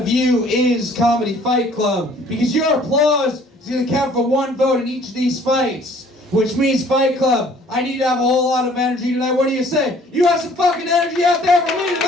you is Comedy Fight Club. Because your applause is going to count for 1 vote in each of these fights. Which means, Fight Club, I need to have a whole lot of energy tonight. What do you say? You have some fucking energy out there for me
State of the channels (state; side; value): normal; both; correlation 0.56